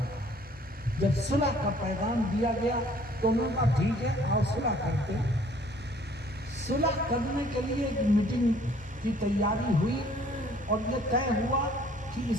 جب صلح کا پیغام دیا گیا تو انہوں نے کہا ٹھیک ہے آؤ صلح کرتے۔ صلح کرنے کے لیے ایک میٹنگ کی تیاری ہوئی اور یہ طے ہوا کہ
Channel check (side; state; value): both; normal; correlation 0.57